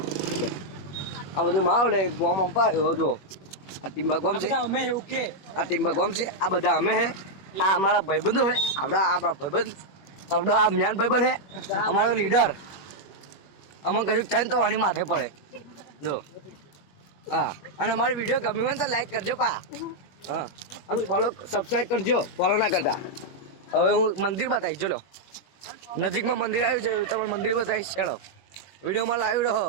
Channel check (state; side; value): late; right; 21 ms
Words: આ બધું માહોલ ગોમ અંપાયો જો આ ટીમ્બા ગોમ છે આ ટીમ્બા ગોમ છે આ બધા અમે હે આ અમારા ભાઈબંધો હે આપણા ભાઈબંધ આપણા આ મ્યાન ભાઈબંધ હે અમારો લીડર અમે કશું થાય તો આની માથે પડે જો હા અને અમારો વિડીયો ગમ્યો હોય તો લાઈક કરજો પા હા અને ફોલો સબસ્ક્રાઈબ કરજો ફોલો ના કરતા હવે હું મંદિર બતાવીશ ચલો નજીકમાં મંદિર આવ્યું છે તમે મંદિર બતાવીશ ચાલો વિડીયોમાં લાઈવ રહો